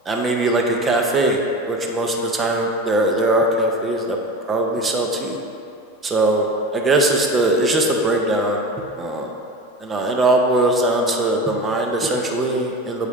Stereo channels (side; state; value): both; normal; correlation 0.30